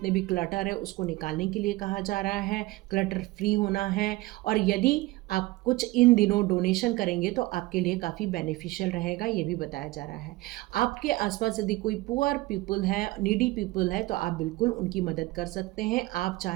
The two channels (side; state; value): left; quieter; 20.0 dB